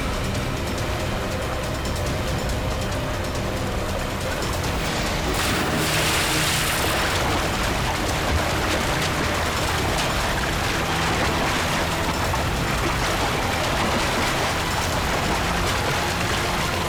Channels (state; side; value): identical; both; correlation 1.00